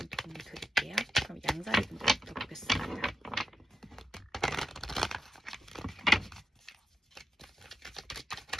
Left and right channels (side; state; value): both; normal; correlation 0.89